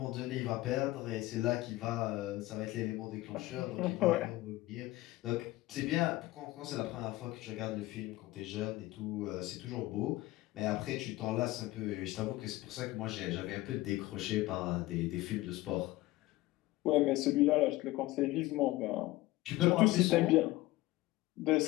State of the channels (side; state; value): right; quieter; 18.3 dB